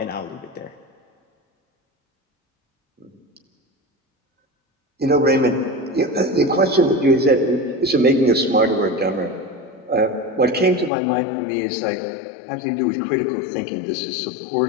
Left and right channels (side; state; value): right; drops out; at 10.9 s